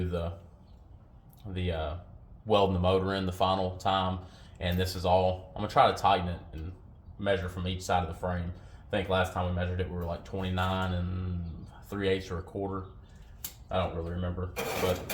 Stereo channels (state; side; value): identical; both; correlation 1.00